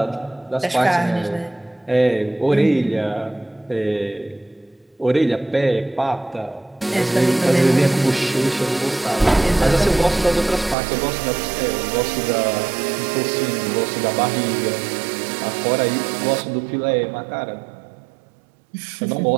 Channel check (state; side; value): drops out; left; at 10.8 s